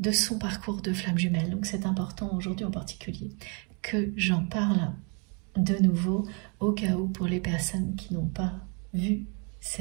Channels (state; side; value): quieter; left; 34.8 dB